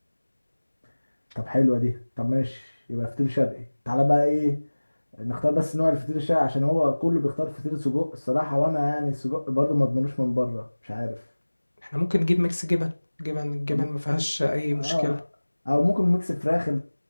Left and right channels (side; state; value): both; inverted; correlation -1.00